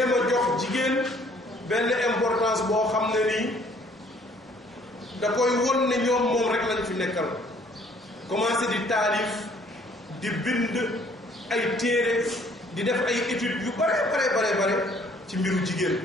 a jox jigéen benn importance boo xam ne nii da koy won ne ñoom moom rek lañ fi nekkal commencé di taalif di bind ay téere di def ay études yu bare ci mbiru jigéen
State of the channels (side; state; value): both; normal; correlation 0.60